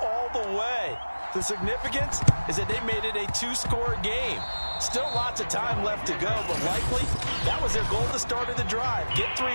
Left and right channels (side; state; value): both; inverted; correlation -1.00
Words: all the way. The significance is that they made it a 2-score game. Still lots of time left to go, but likely that was their goal at the start of the drive. Get 3